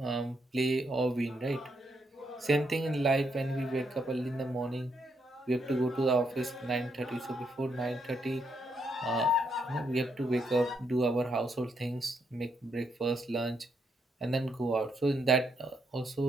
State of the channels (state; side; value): normal; both; correlation 0.77